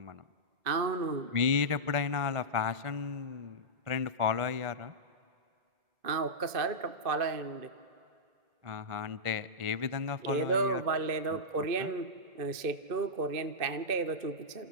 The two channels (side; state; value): left; late; 2.5 ms